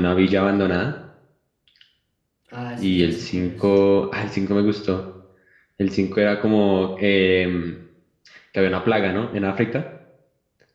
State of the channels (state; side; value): identical; both; correlation 1.00